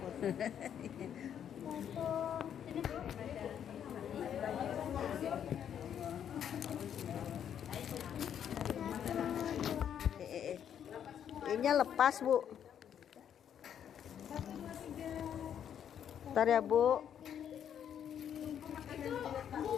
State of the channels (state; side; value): quieter; right; 9.1 dB